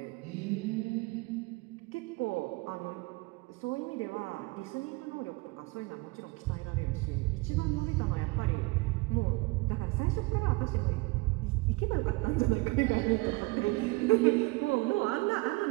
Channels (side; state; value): left; quieter; 24.4 dB